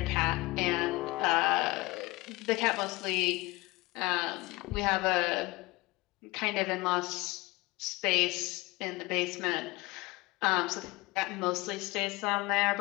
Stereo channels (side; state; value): right; quieter; 22.6 dB